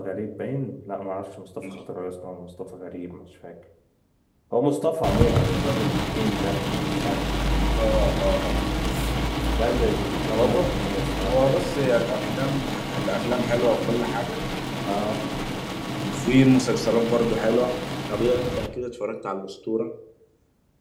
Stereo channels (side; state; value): both; identical; correlation 1.00